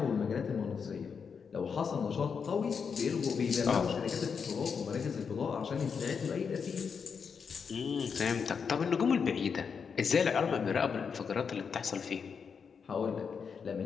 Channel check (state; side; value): quieter; right; 6.2 dB